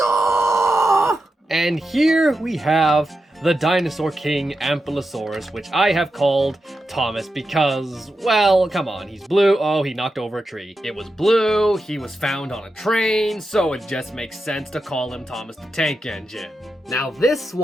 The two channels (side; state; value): both; normal; correlation 0.89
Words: And here we have the Dinosaur King Ampelosaurus, which I have called Thomas because, well, come on, he's blue. Oh, he knocked over a tree. It was blue, he was found on a train, so it just makes sense to call him Thomas the Tank Engine. Now, this